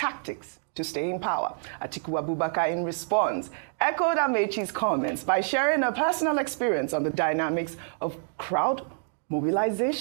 to stay in power. Atiku Abubakar, in response, echoed Amechi's comments by sharing a personal experience on the dynamics of crowd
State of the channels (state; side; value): silent; left; digital silence